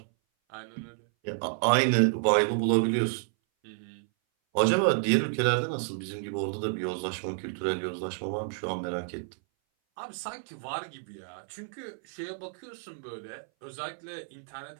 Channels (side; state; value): left; silent; 58 dB below the other